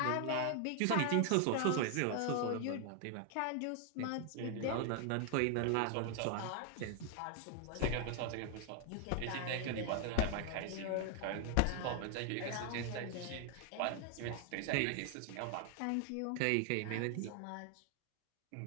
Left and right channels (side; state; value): both; different; correlation 0.00